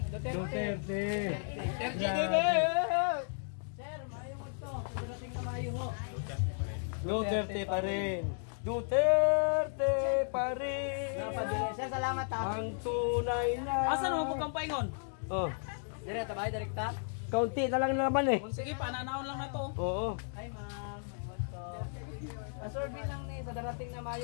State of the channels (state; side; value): silent; right; digital silence